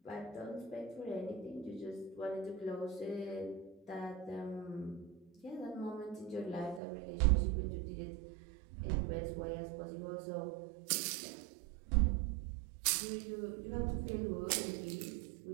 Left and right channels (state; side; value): drops out; left; at 6.8 s